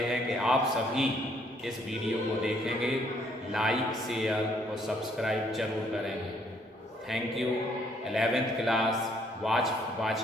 कि आप सभी इस वीडियो को देखेंगे, लाइक, शेयर और सब्सक्राइब जरूर करेंगे। Thank you 11th class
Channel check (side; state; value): both; normal; correlation 0.67